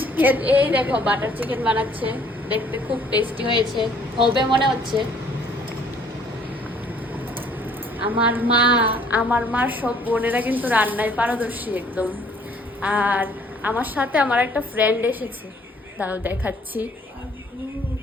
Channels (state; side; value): normal; both; correlation 0.59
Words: এই দেখো বাটার চিকেন বানাচ্ছে, দেখতে খুব টেস্টি হয়েছে, হবে মনে হচ্ছে। আমার মার সব বোনেরা কিন্তু রান্নায় পারদর্শী একদম। আর আমার সাথে আমার একটা ফ্রেন্ড এসেছে, দাঁড়াও দেখাচ্ছি।